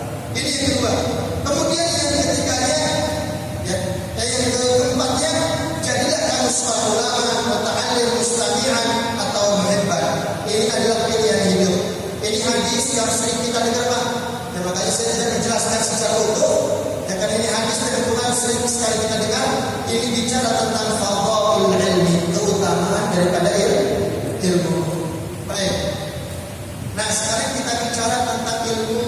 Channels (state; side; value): identical; both; correlation 1.00